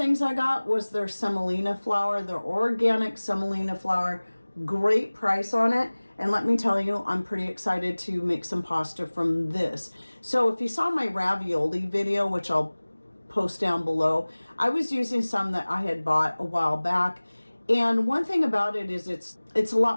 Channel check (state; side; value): inverted; both; correlation -1.00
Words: I got was their semolina flour, their organic semolina flour. Great price on it. And let me tell you, I'm pretty excited to make some pasta from this. So if you saw my ravioli video, which I'll post down below, I was using some that I had bought a while back. And one thing about it is it's a